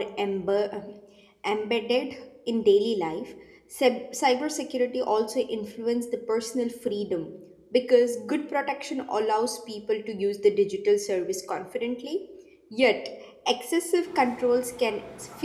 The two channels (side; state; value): both; identical; correlation 1.00